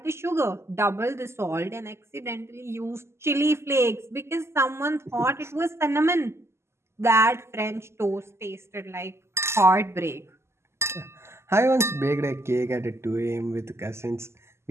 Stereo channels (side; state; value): left; late; 0.13 ms